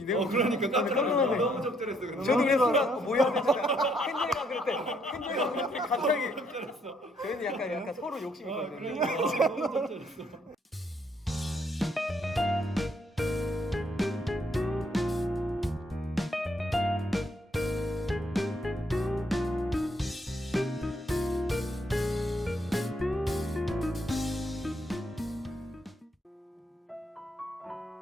내용 그러니까 깜짝 깜짝 놀랐네. 놀랐네. 너무 적절했어. 그럼. 저도 그래 순간 뭐 해야 되지? 헨젤이가 그랬대 갑자기 저희는 약간 서로 욕심 있거든요. 그러니까 너무 적절했어.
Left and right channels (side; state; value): both; normal; correlation 0.71